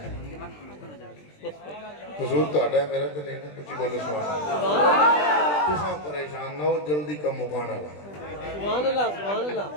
قصور تو آڈا ہے میرا تو نہیں کچھ بولو سبحان اللہ تساں پریشان نہ ہو جلدی کا مکانا لگا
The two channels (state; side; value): late; right; 20 ms